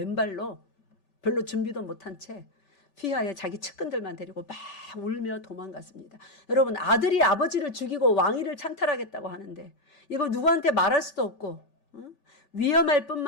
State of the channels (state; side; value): late; right; 5.2 ms